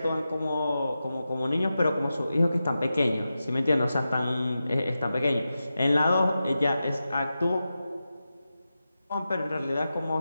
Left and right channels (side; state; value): both; inverted; correlation -0.92